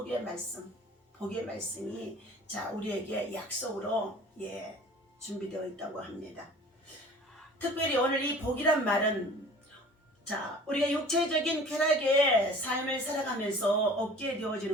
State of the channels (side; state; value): both; normal; correlation 0.45